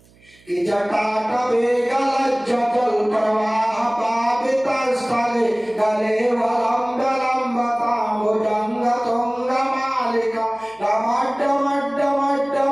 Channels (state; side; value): noise; right; hum, 29 dB below the sound